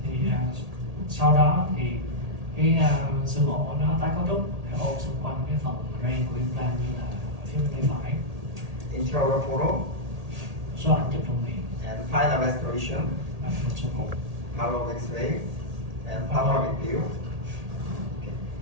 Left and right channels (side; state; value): left; late; 1.8 ms